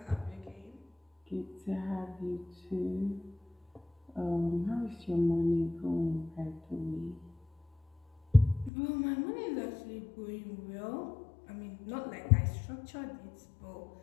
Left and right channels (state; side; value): drops out; right; at 8.7 s